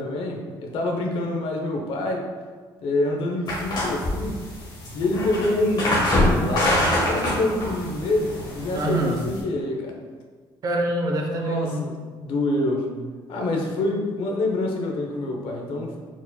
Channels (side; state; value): both; normal; correlation 0.57